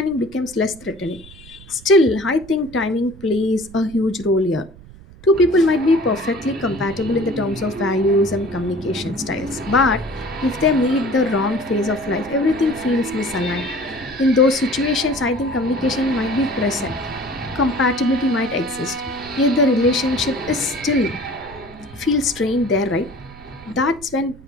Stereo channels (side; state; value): right; noise; rumble, 20 dB below the sound